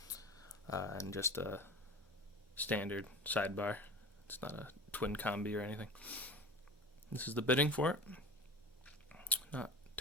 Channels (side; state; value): both; normal; correlation 0.36